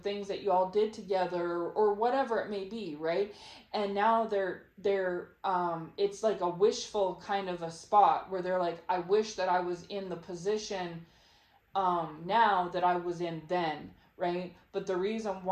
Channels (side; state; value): both; identical; correlation 1.00